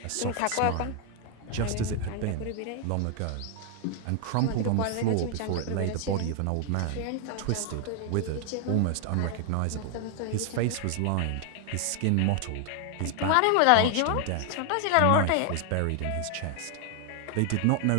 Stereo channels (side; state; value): both; different; correlation 0.00